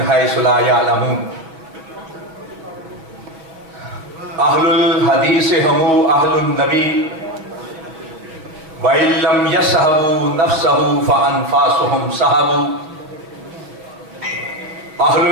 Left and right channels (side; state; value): left; late; 6.3 ms